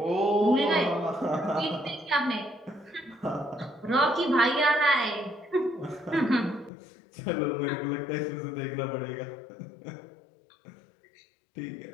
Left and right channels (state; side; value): drops out; right; at 6.7 s